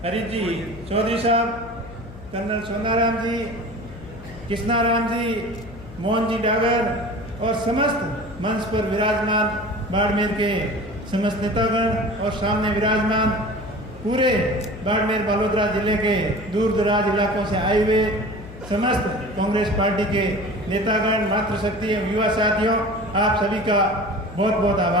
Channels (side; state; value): left; noise; hum, 17 dB below the sound